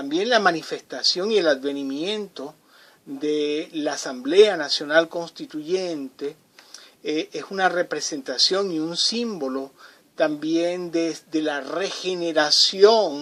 la manifestación y el advenimiento de la Asamblea Nacional Constituyente es una representación y un símbolo también de la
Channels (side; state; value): both; identical; correlation 1.00